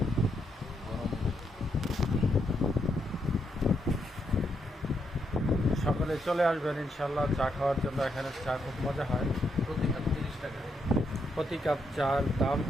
সকলে চলে আসবেন ইনশাল্লাহ চা খাওয়ার জন্য। এখানে চা খুব মজা হয়। প্রতি কাপ 30 টাকা। প্রতি কাপ চার দাম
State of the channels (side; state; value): both; normal; correlation 0.79